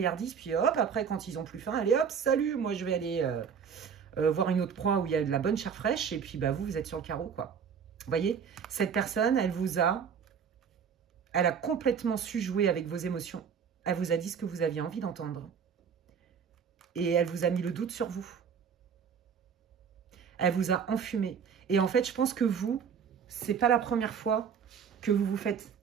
puis hop, après, quand ils ont plus faim, allez hop, salut, moi je vais aller voir une autre proie où il y a de la bonne chair fraîche, et puis bah, vous êtes sur le carreau, quoi. Vous voyez, cette personne, elle a complètement su jouer avec vos émotions. Elle vous a dit ce que vous aviez envie d'entendre. Et elle vous a mis le doute sur vous. Elle vous a enfumé. Et en fait, je pense que vous, c'est pas la première fois que vous vous faites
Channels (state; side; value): quieter; left; 7.0 dB